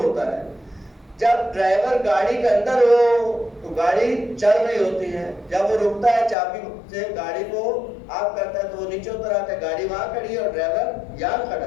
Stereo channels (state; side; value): drops out; right; at 6.4 s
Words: ہوتا ہے. جب ڈرائیور گاڑی کے اندر ہو تو گاڑی چل رہی ہوتی ہے، جب وہ رکتا ہے چابی سے گاڑی کو آف کرتا ہے تو وہ نیچے اتر آتا ہے، گاڑی وہاں کھڑی ہے اور ڈرائیور یہاں کھڑا